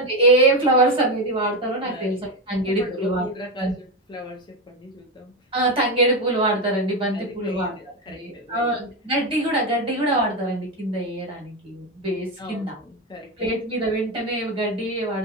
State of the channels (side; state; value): both; normal; correlation 0.12